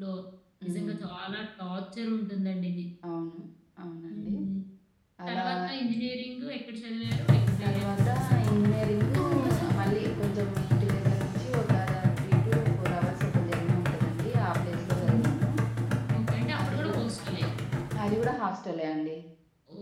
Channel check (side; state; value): both; identical; correlation 1.00